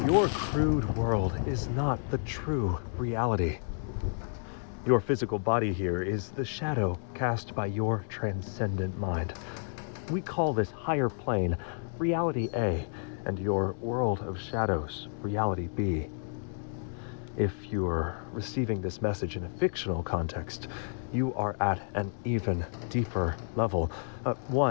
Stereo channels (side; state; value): right; silent; digital silence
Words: Your crude world is not the true reality. Your physical body here is the shadow cast by your transcendent mind. We call this higher plane Reality A, and your world of shadows, Reality B. If you're receiving this message in a fictional context, you are at an even deeper level,